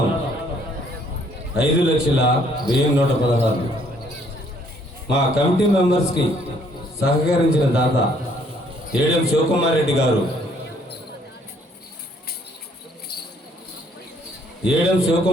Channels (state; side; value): normal; both; correlation 0.65